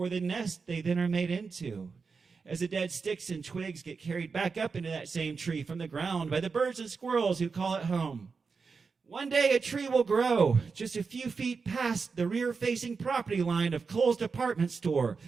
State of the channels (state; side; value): quieter; left; 5.0 dB